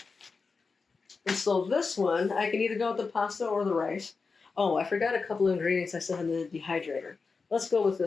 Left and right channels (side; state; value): right; quieter; 4.6 dB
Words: And so this one, I can either go with the pasta or the rice. Oh, I forgot a couple of ingredients I said in the dehydrator. Let's go with